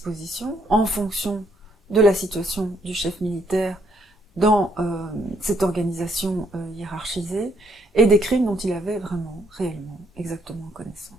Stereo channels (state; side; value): normal; both; correlation 0.71